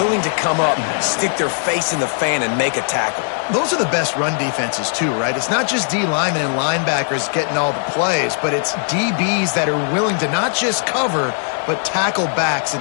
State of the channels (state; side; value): silent; right; digital silence